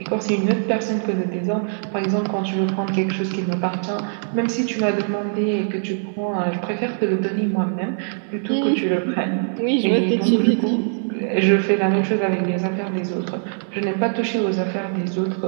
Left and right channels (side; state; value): left; silent; 63 dB below the other